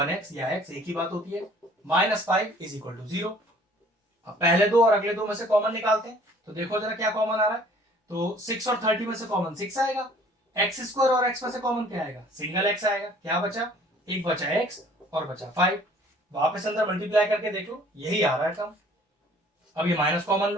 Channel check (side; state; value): both; normal; correlation 0.54